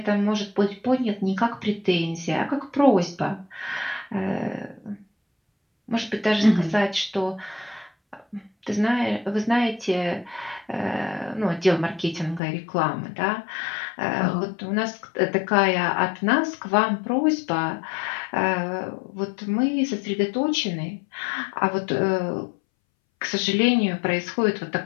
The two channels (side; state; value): right; drops out; at 12.4 s